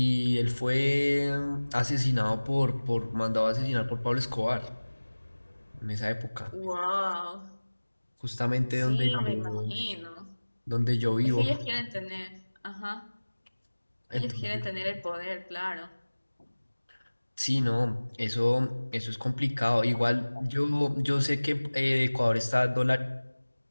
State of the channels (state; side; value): inverted; both; correlation -1.00